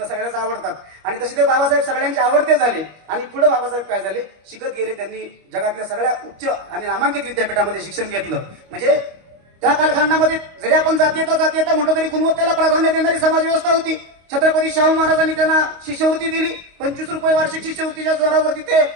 सगळ्याच आवडतात. आणि तसे ते बाबासाहेब सगळ्यांचे आवडते झाले. आणि पुढे बाबासाहेब काय झाले, शिकत गेले. त्यांनी जगातल्या सगळ्या उच्च आणि नामांकित विद्यापीठामध्ये शिक्षण घेतलं. म्हणजे त्या कालखंडामध्ये जरी आपण जातीयता म्हटलं तरी गुणवत्तेला प्राधान्य देणारी समाज व्यवस्था होती. छत्रपती शाहू महाराजांनी त्यांना शिष्यवृत्ती दिली. 25 रुपये वार्षिक शिष्यवृत्तीच्या जोरावरती ते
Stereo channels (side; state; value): left; late; 25 ms